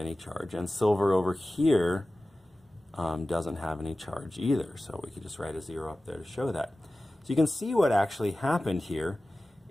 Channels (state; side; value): normal; both; correlation 0.96